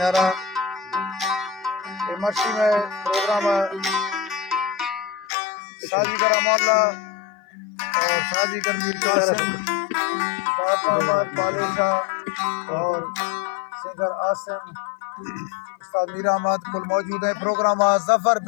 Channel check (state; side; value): drops out; right; at 5.2 s